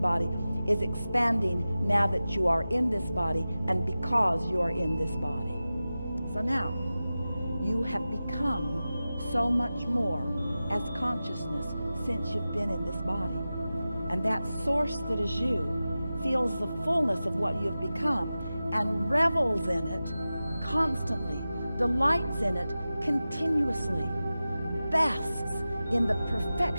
is expanding now that you are in this body and because you are in this body. So now you have become so much more as consciousness since you've been in this body. And that source that is you feels the fullness of what you've become and revels in it constantly, delights in it continuously, basks in the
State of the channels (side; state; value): both; inverted; correlation -0.95